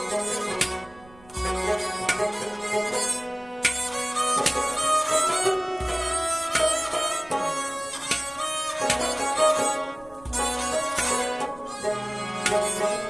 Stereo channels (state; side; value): noise; right; rumble, 25 dB below the sound